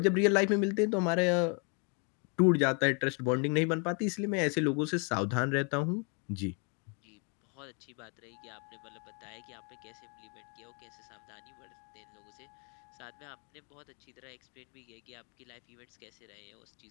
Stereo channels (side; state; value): right; quieter; 36.1 dB